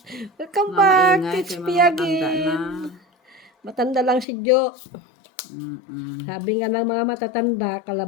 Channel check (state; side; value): drops out; right; at 4.2 s